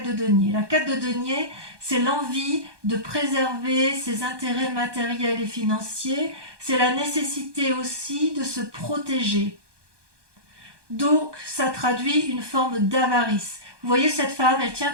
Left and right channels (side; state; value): left; late; 1.2 ms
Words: de denier. La 4 de denier, c'est l'envie de préserver ses intérêts matériels et financiers. C'est la nécessité aussi de se protéger. Donc, ça traduit une forme d'avarice. Vous voyez, cette femme, elle tient